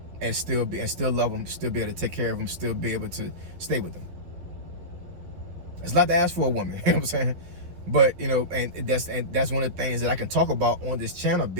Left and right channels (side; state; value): left; late; 12 ms